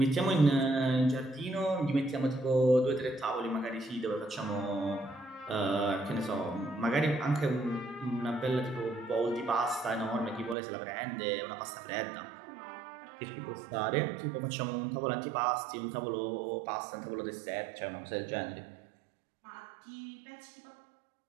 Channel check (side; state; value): left; drops out; at 10.6 s